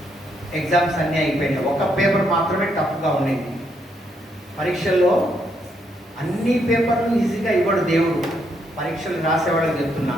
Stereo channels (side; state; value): both; normal; correlation 0.75